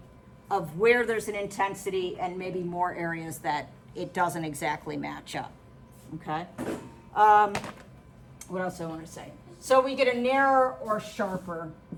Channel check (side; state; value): both; identical; correlation 1.00